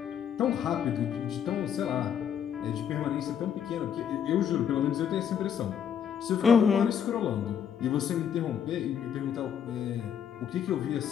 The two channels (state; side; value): quieter; right; 8.4 dB